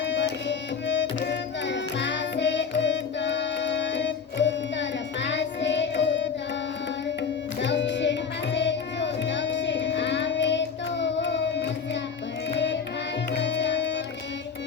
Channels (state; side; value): quieter; right; 6.1 dB